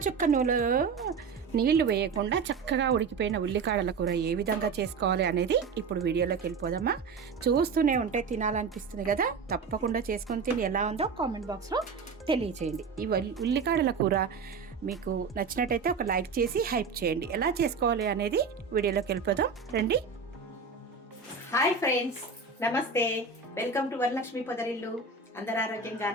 చుక్క నూనెలో నీళ్లు వేయకుండా చక్కగా ఉడికిపోయిన ఉల్లికాడల కూర ఏ విధంగా చేసుకోవాలి అనేది ఇప్పుడు వీడియోలోకి వెళ్ళిపోదామా. చూస్తూనే ఉంటే తినాలనిపిస్తుంది కదా. తప్పకుండా చేసుకొని తిని ఎలా ఉందో కామెంట్ బాక్స్లో తెలియచేయండి. ఈ ఉల్లికాడల కూర మీకు నచ్చినట్టయితే ఒక లైక్ చేసి హైప్ చేయండి. ఎలా చేసుకోవాలి అనేది వీడియోలోకి వెళ్ళిపోదాం రండి. హాయ్ ఫ్రెండ్స్, నమస్తే. Welcome to Varalakshmi Podarillu. అందరూ ఆరోగ్యంగా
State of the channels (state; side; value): quieter; left; 5.1 dB